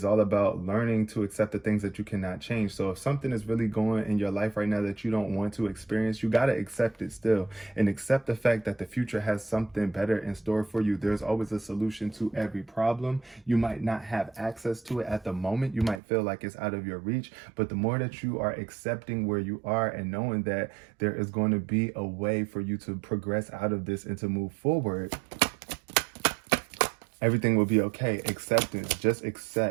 all about learning to accept the things that you cannot change. So if something is really going in your life right now that you don't want to experience, you got to accept it still, and accept the fact that the future has something better in store for you. There's always a solution to every problem. You might not have access to it at the moment. You might feel like it's out of your reach, but the more that you are accepting where you are and knowing that there is going to be a way for you to progress out of this and to move forward, everything will be okay. Acceptance. Just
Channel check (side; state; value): left; drops out; at 16.0 s